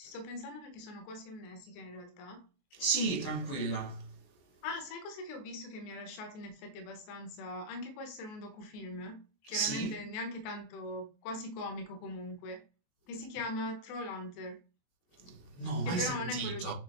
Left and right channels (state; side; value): late; right; 23 ms